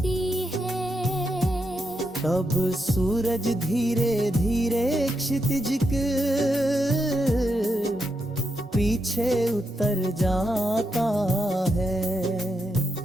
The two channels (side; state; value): both; normal; correlation 0.84